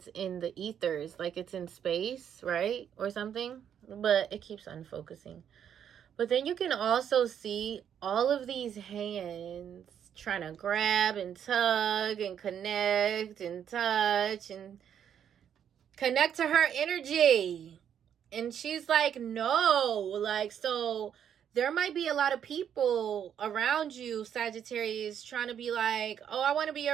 in the ethers, like it's in space, right? Or something, but it keeps unfocusing. But then you can also see all of these hands trying to grab and tug and connect and touch and connect to her energy. And she's like, no, like, so there might be a lot of people around you, Sagittarius, trying to be like, oh, I want to be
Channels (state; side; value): quieter; left; 8.9 dB